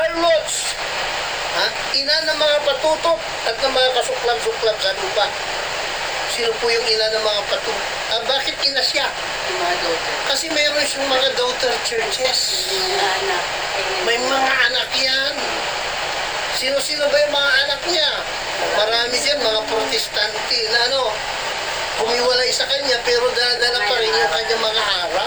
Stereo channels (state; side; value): identical; both; correlation 1.00